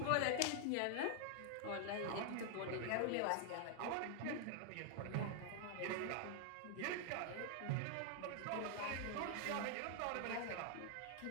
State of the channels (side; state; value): both; different; correlation 0.00